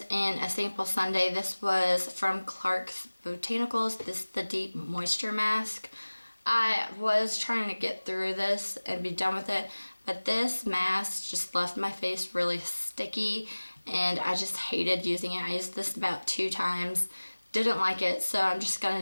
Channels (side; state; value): both; inverted; correlation -1.00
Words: in a sample sundae, this was from Clark's Botanicals. This is the Deep Moisture Mask. I was trying to get through this and be done with it, but this mask just left my face really sticky and I just hated using it. I used this about 2 times, didn't like it, so I'm just